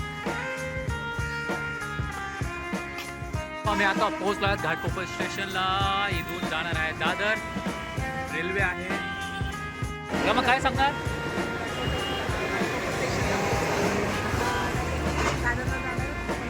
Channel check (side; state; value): both; identical; correlation 1.00